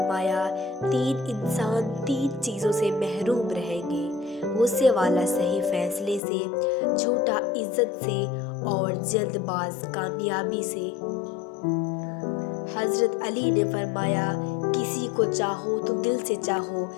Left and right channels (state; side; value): drops out; right; at 6.2 s